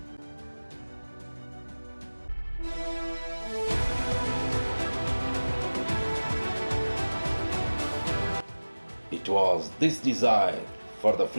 It was this desire for the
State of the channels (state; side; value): inverted; both; correlation -1.00